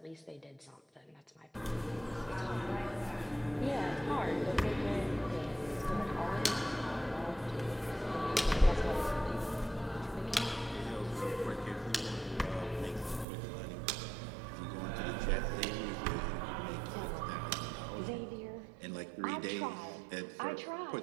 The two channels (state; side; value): drops out; left; at 13.2 s